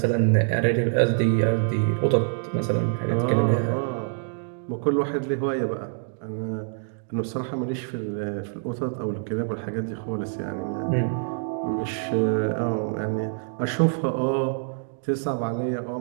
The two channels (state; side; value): silent; left; digital silence